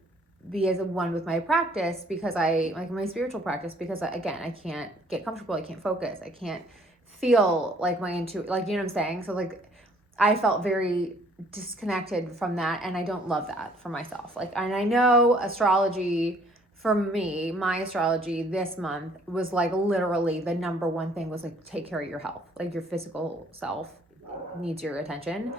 be as a one with my practice because I like my spiritual practice, because again, I can't get comfortable. I can't focus. I can't feel like my intuition, like, you know what I'm saying? So like, I felt very disconnected from that. And I don't love that for myself. Like, and I know astrology for me, my astrology this month was like literally the number one thing was like, take care of your health. Like, your physical self needs your attention.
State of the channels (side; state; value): both; normal; correlation 0.60